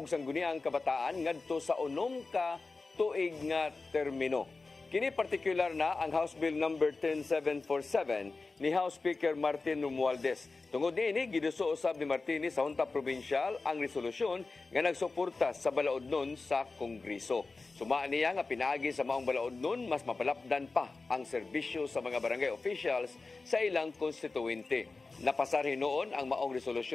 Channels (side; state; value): right; quieter; 3.8 dB